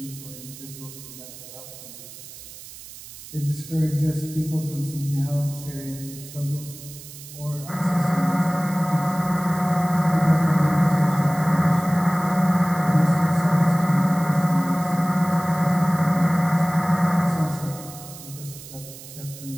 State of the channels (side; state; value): right; noise; hiss, 15 dB below the sound